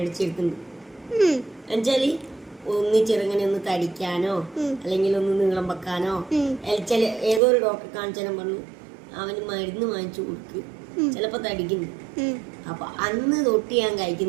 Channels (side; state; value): left; drops out; at 7.4 s